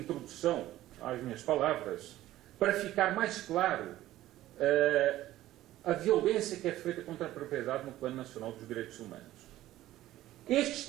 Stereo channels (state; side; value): quieter; left; 14.8 dB